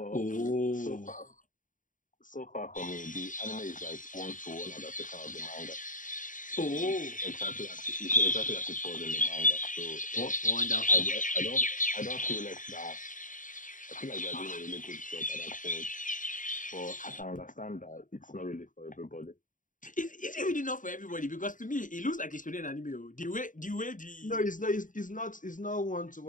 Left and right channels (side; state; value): right; late; 0.38 ms